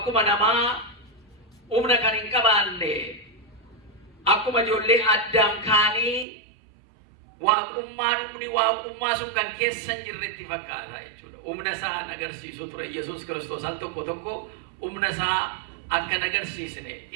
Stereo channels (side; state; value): left; drops out; at 6.2 s